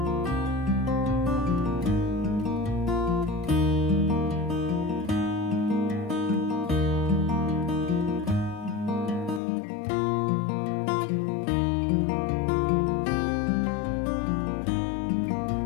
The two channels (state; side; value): drops out; right; at 9.4 s